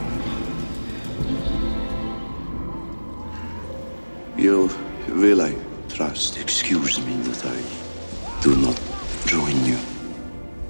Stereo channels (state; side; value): inverted; both; correlation -1.00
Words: You will, I trust, excuse me that I do not join you.